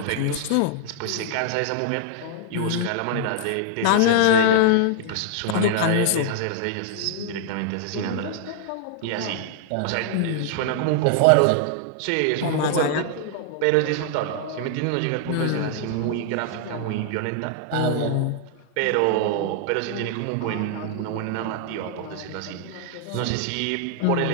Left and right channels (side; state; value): both; different; correlation -0.01